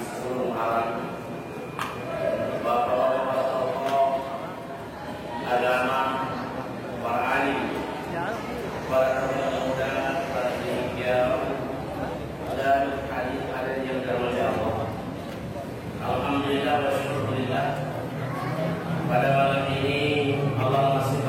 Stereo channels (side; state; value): both; identical; correlation 1.00